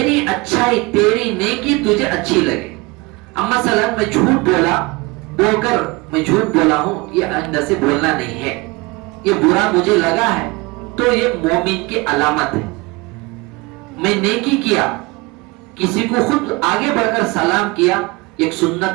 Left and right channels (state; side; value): quieter; left; 24.3 dB